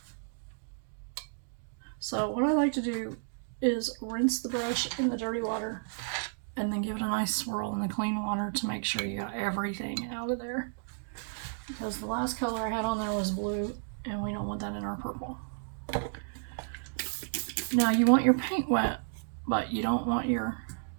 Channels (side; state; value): left; silent; digital silence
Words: So what I like to do is rinse the brush in the dirty water and then give it a nice swirl in the clean water to make sure you got everything out of there. Because the last color I had on there was blue, and we don't want that in our purple. Now you want your paint wet, but you do